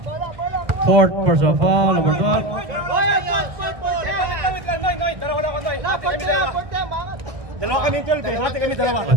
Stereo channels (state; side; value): late; left; 1.6 ms